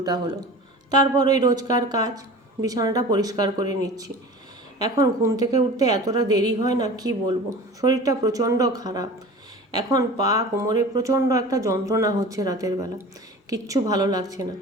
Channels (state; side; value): normal; both; correlation 0.38